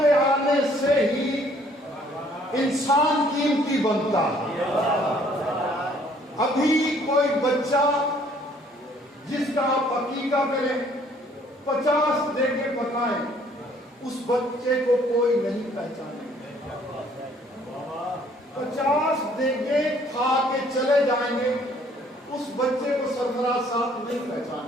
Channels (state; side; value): normal; both; correlation 0.61